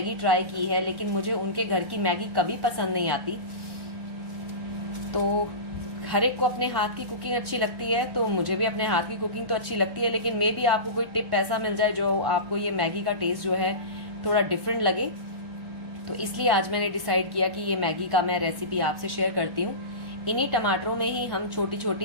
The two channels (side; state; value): left; late; 1.1 ms